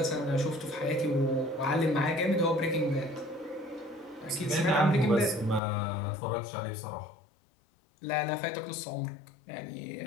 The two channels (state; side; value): drops out; right; at 5.6 s